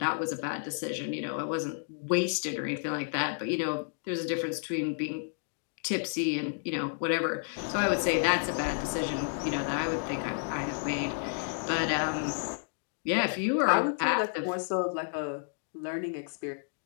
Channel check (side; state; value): right; silent; digital silence